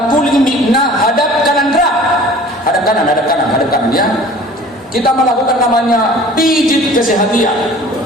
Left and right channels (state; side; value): normal; both; correlation 0.46